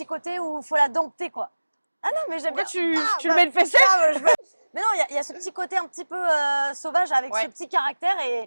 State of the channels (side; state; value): both; inverted; correlation -1.00